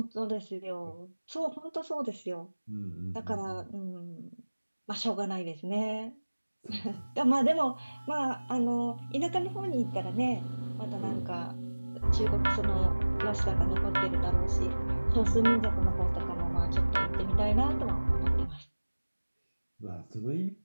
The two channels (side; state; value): both; inverted; correlation -1.00